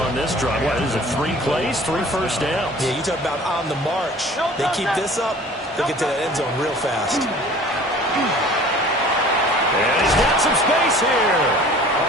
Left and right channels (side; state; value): both; normal; correlation 0.47